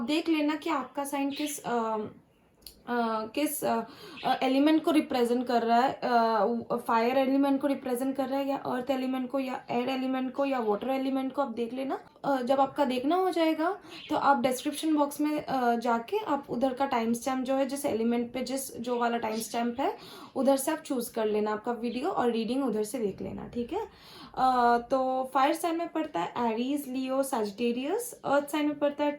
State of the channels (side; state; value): both; identical; correlation 1.00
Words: देख लेना कि आपका साइन किस एलिमेंट को रिप्रेजेंट कर रहा है। फायर एलिमेंट को रिप्रेजेंट कर रहा है या अर्थ एलिमेंट को या एयर एलिमेंट को या वाटर एलिमेंट को, आप देख लेना। जब आपका देखना हो जाएगा तो आप डिस्क्रिप्शन बॉक्स में जाके आप उधर का टाइम स्टैम्प जो है, जिस एलिमेंट पे जो वाला टाइम स्टैम्प है उधर से आप चूज कर लेना आपका वीडियो और रीडिंग उधर से देख लेना, ठीक है। तो फायर साइन में पड़ता है Aries, Leo, Sagittarius. Earth sign में पड़ता है